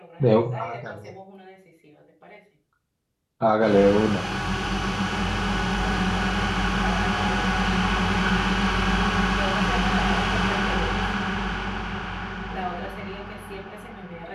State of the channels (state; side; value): identical; both; correlation 1.00